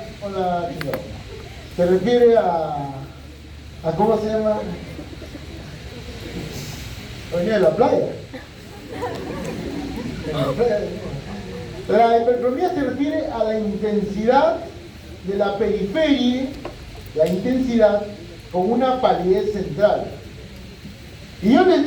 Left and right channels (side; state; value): both; identical; correlation 1.00